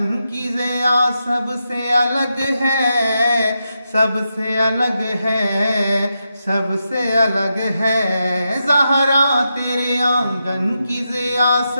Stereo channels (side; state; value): both; inverted; correlation -0.86